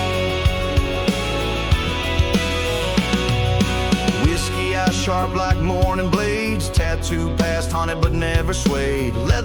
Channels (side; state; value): both; identical; correlation 1.00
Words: Whiskey eyes sharp like morning blades. Tattooed past, haunted but never swayed.